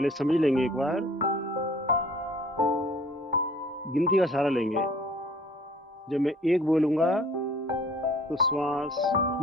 समझ लेंगे, एक बार गिनती का सहारा लेंगे। जब मैं एक बोलूंगा तो श्वास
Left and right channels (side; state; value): both; normal; correlation 0.52